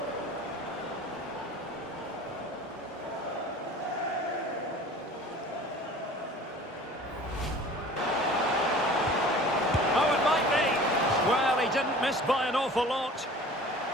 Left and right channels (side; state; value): both; normal; correlation 0.44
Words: Well, he didn't miss by an awful lot.